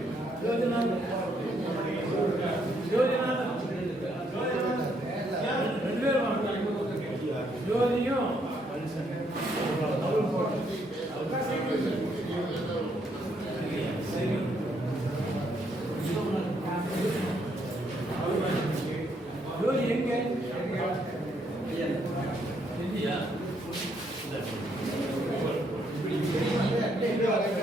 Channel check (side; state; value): both; normal; correlation 0.72